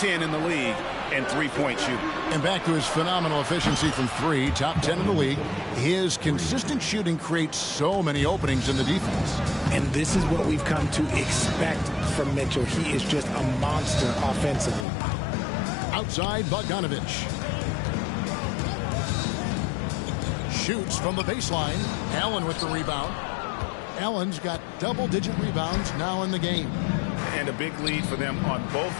in the league and three-point shooting. And back to his phenomenal efficiency from 3, top 10 in the league. His consistent shooting creates so many openings in the defense. And this is what we've come to expect from Mitchell. He is just a monster offensively. Outside Bogdanovic. Shoots from the baseline. Allen with the rebound. Allen's got double-digit rebounds now in the game. And a big lead for them on both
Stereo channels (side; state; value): right; drops out; at 14.9 s